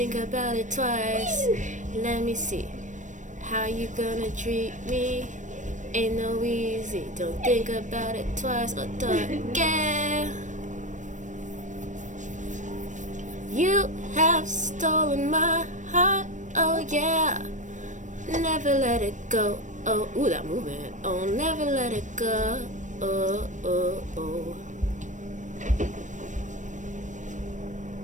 about it twice. Let me see. How you gonna treat me? Ain't no easy, don't think about it twice. Oh, yeah. You have stolen my heart, oh yeah. Never let it go. Oh, ooh, that movement. Oh, never let it go. Oh, oh, oh.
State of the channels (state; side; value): late; left; 0.36 ms